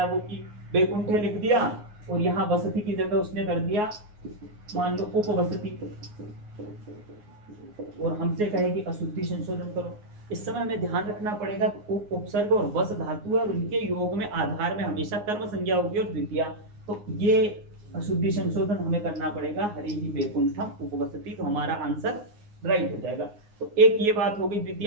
वो, कि बैकुंठ लिख दिया और यहाँ वसति की जगह उसने कर दिया मान लो उपवसति, और हमसे कहे कि अशुद्धि संशोधन करो। इस समय हमें ध्यान रखना पड़ेगा, उप, उपसर्ग और वस धातु है और उनके योग में आधार में हमेशा कर्म संज्ञा होगी और द्वितीया, तो ये अशुद्धि संशोधन हमें करना पड़ेगा, हरि ही बैकुंठम उपवसति, तो हमारा आंसर राइट हो जाएगा। तो एक ये बात होगी,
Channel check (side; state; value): left; late; 9.6 ms